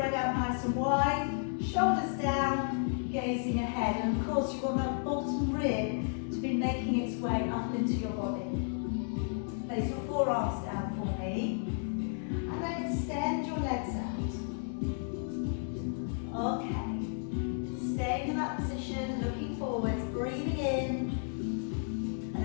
out nice and wide, shoulders down, gazing ahead. And of course you want that bottom rib to be making its way up into your body. Place your forearms down for me. And then extend your legs out. Okay. Staying in that position, looking forwards, breathing in.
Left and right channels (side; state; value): right; silent; 56 dB below the other